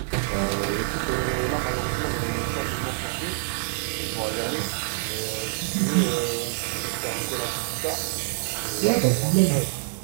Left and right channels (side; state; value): left; silent; 58 dB below the other